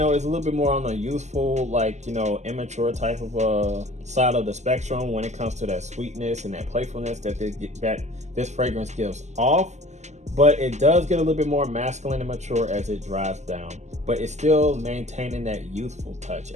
is a little bit more on the youthful, like, you know, immature type of side of the spectrum when it comes to that sweetness and that playfulness that this fragrance gives off. But it does get a little bit more masculine and mature as it dries down. But it's still maintaining that youthful touch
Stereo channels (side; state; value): left; late; 0.33 ms